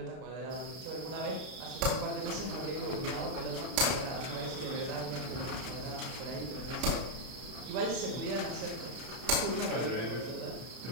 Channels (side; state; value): left; late; 32 ms